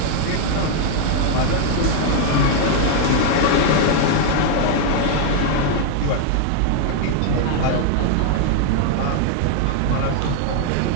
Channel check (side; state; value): both; different; correlation 0.00